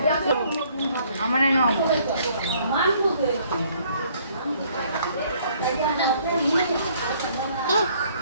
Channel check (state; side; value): inverted; both; correlation -0.62